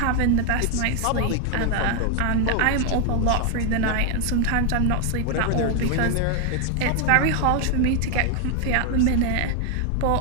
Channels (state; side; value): different; both; correlation 0.00